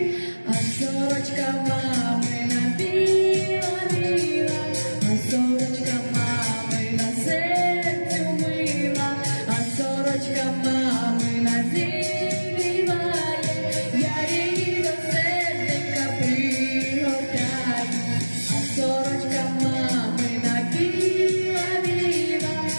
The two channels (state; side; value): inverted; both; correlation -1.00